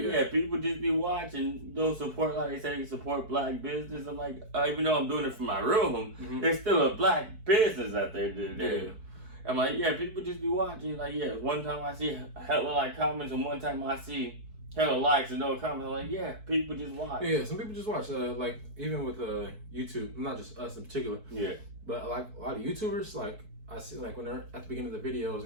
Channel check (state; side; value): late; left; 4.6 ms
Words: yeah, people just be watching. Don't support, like they say, support black business. I'm like, even though I'm doing it from my room, there's still a black business out there. Yeah. I'm like, yeah, people just be watching. Like, yeah, one time I see hella like comments, and one time I see hella likes and no comments. I'm like, yeah, people just watch. Yeah, some people just watch. Like even with YouTube, not just us in particular. Yeah. But like a lot of YouTubers, like I see, like when they're at the beginning of the videos